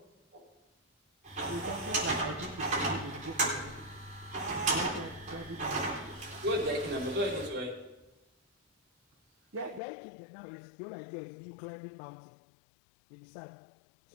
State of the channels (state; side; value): drops out; right; at 9.8 s